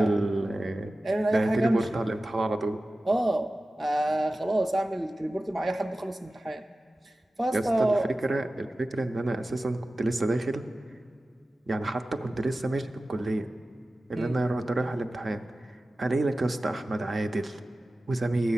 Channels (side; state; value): both; normal; correlation 0.95